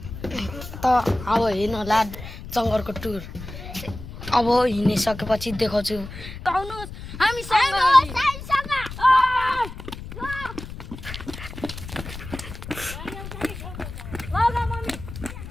त अब हिँड्नुला जंगलको टुर। अब हिँडिसकेपछि देखाउँछु। आउनुस् हामी सँग।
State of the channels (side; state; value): left; noise; rumble, 11 dB below the sound